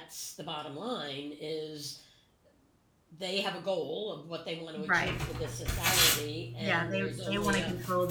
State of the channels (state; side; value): identical; both; correlation 1.00